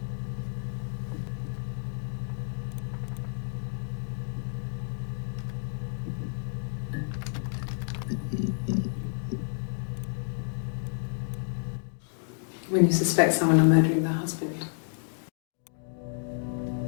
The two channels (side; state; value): right; silent; digital silence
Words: When you suspect someone of murdering their husband.